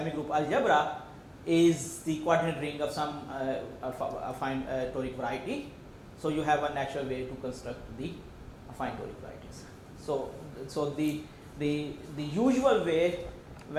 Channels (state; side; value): identical; both; correlation 1.00